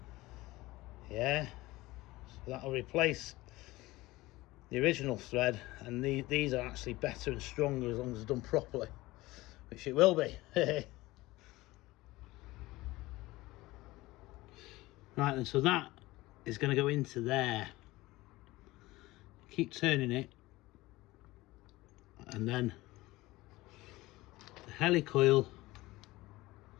Yeah, so that'll replace the original thread, and these are actually better and stronger as long as it's done properly, which it will be. Right then, so that is going to go into there. Keep turning it, and then the helicoil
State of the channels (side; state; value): right; quieter; 19.3 dB